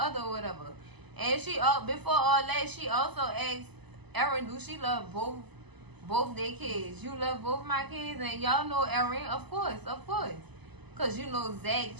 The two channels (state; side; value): late; left; 0.99 ms